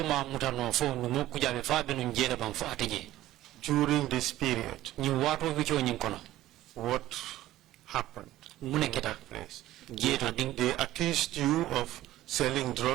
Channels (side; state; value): left; quieter; 14.8 dB